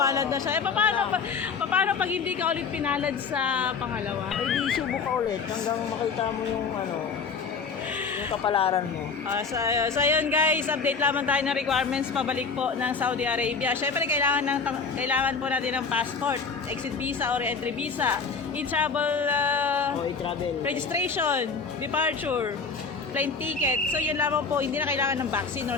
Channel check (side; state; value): right; quieter; 5.1 dB